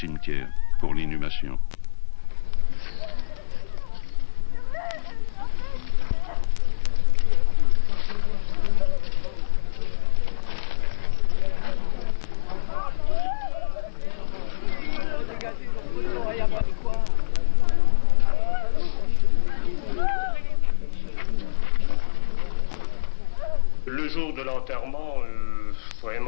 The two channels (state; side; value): silent; right; digital silence